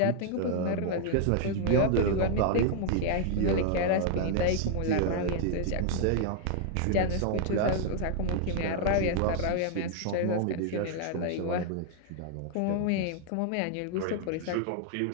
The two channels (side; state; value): both; different; correlation 0.00